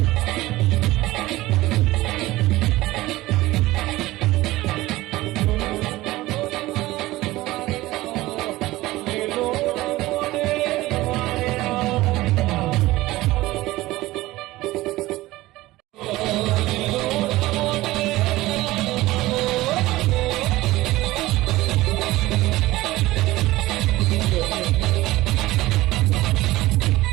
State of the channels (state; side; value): quieter; left; 18.0 dB